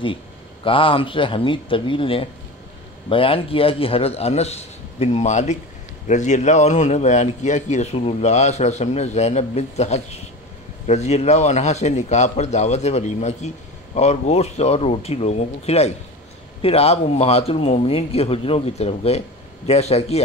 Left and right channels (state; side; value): normal; both; correlation 0.29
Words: دی، کہا ہم سے حمید طویل نے بیان کیا کہ حضرت انس بن مالک رضی اللہ عنہ نے بیان کیا کہ رسول اللہ صلی اللہ علیہ وسلم نے زینب بنت حجش رضی اللہ عنہا سے نکاح پر دعوت ولیمہ کی اور گوشت اور روٹی لوگوں کو کھلائی۔ پھر آپ امہات المومنین کے حجروں کی طرف گئے، جیسا کہ